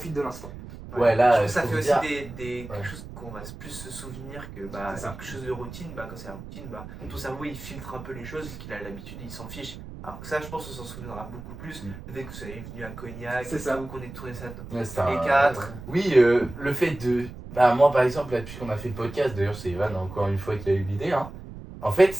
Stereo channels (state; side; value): noise; right; rumble, 13 dB below the sound